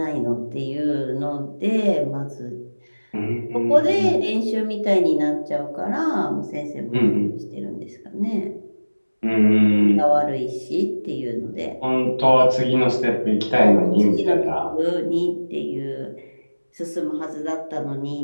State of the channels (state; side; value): inverted; both; correlation -1.00